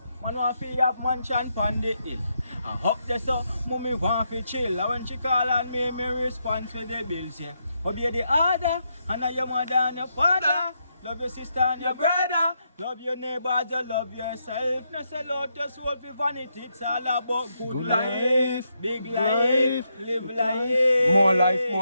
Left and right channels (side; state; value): both; inverted; correlation -0.81